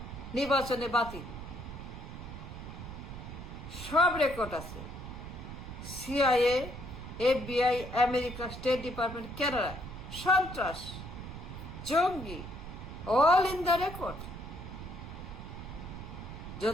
নির্বাচনে বাতিল, সব রেকর্ড আছে। CIA, FBI, America, state department, Canada, সন্ত্রাস, জঙ্গি, অল ইন দ্য রেকর্ড।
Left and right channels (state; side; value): noise; right; rumble, 10 dB below the sound